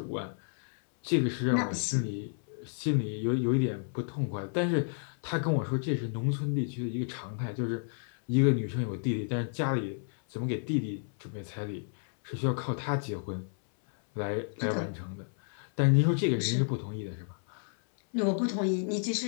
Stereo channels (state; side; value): silent; right; 57 dB below the other